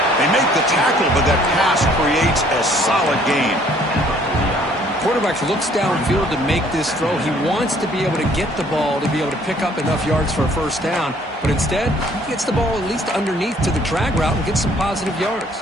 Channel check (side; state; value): both; normal; correlation 0.60